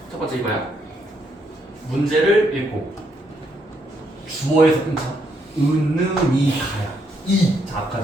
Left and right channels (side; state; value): both; normal; correlation 0.75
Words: 첫 번째 이거야. 문제를 읽고 주어에서 끊자. 은음이 가야. 자,